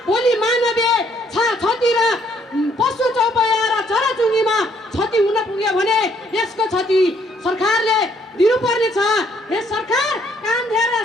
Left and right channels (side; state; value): both; normal; correlation 0.67